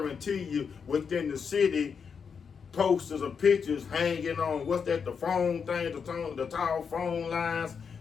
you, within the city, posters or pictures hanging on, what's that, the phone thing, the tall phone lines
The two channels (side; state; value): right; quieter; 6.3 dB